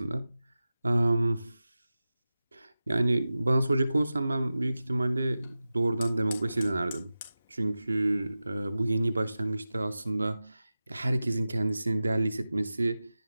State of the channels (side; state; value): both; inverted; correlation -0.95